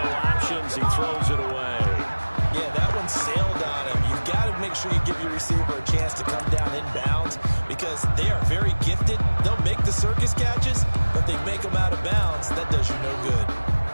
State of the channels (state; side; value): inverted; both; correlation -1.00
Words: options, he throws it away. Yeah, that one sailed on him. You've got to make sure you give your receiver a chance to come down inbounds because they are very gifted. They'll make the circus catches, but they make them out of bounds. That does you no good.